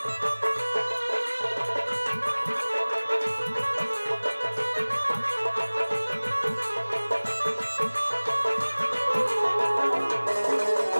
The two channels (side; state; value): both; inverted; correlation -1.00